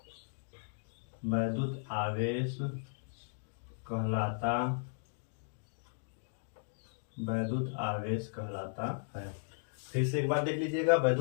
कहलाता है। फिर से एक बार देख लीजिएगा।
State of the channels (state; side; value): silent; right; digital silence